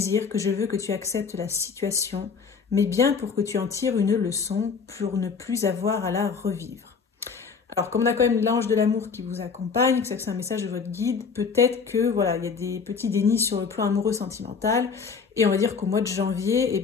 que je veux que tu acceptes la situation, mais bien pour que tu en tires une leçon, pour ne plus avoir à la revivre. Alors, comme on a quand même l'ange de l'amour qui vous accompagne, que c'est un message de votre guide, peut-être que voilà, il y a des petits dénis sur le plan amoureux sentimental, et on va dire qu'au mois de janvier, eh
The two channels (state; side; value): quieter; right; 5.6 dB